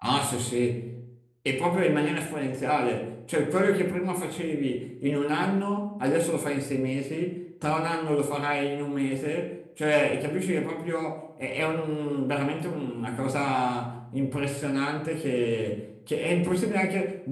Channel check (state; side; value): identical; both; correlation 1.00